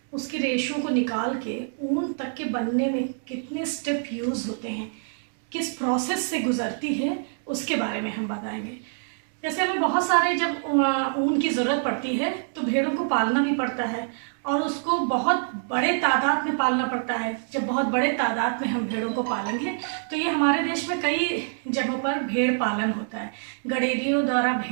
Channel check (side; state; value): left; silent; digital silence